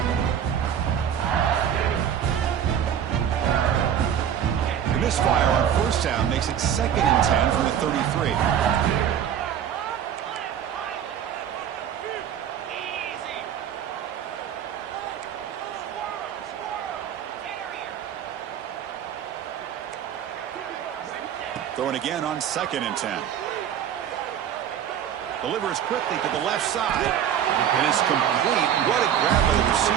The misfire on first down makes it second and 10 from the 33. Throwing again on second and 10. Delivers quickly to the left side. And it's complete. What a grab by the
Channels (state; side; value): quieter; left; 9.3 dB